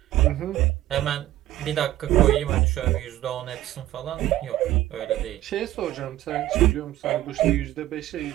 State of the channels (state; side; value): quieter; left; 14.3 dB